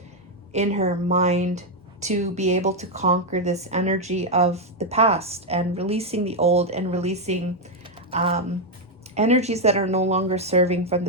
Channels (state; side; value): normal; both; correlation 0.02